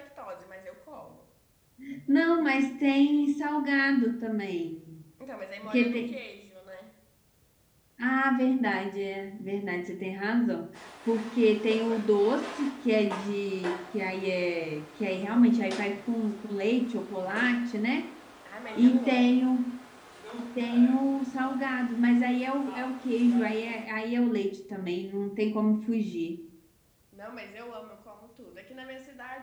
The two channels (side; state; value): both; identical; correlation 1.00